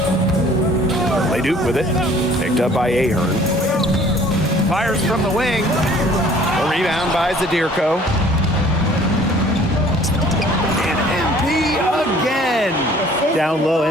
Leduc with it. Picked up by Ahern. Fires from the wing. A rebound by Zadirko. And MP again. Down low,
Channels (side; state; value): both; normal; correlation 0.54